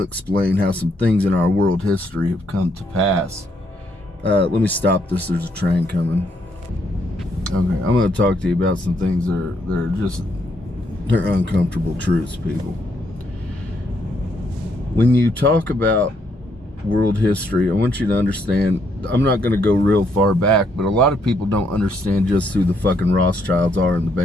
how some things in our world history have come to pass. Let me stop this. There's a train coming. Okay, I'm going to talk to you about some things they're uncomfortable truths, people. When you talk about world history, I want you to understand, I'm not going to go real far back, but a lot of people don't understand just who the fucking Rothschilds are in the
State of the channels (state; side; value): normal; both; correlation 0.74